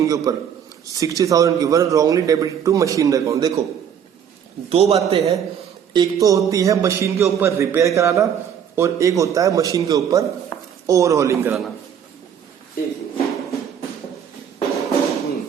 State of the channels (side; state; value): left; quieter; 8.4 dB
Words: के ऊपर 60,000 की, were wrongly debit to machine account. देखो दो बातें हैं, एक तो होती है मशीन के ऊपर रिपेयर कराना, और एक होता है मशीन के ऊपर ओवरहॉलिंग कराना।